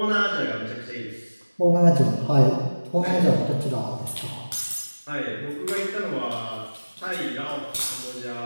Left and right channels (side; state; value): both; inverted; correlation -1.00